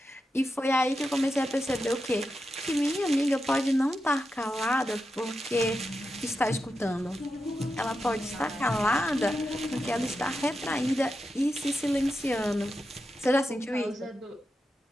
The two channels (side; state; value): both; normal; correlation 0.89